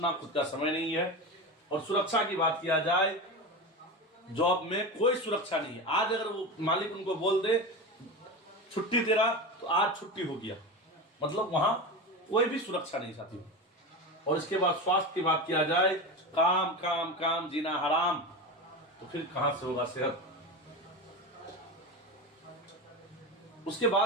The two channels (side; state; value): both; normal; correlation 0.23